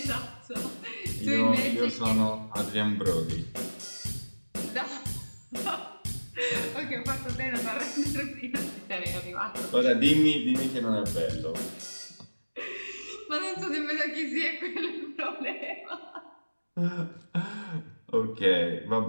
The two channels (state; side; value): inverted; both; correlation -1.00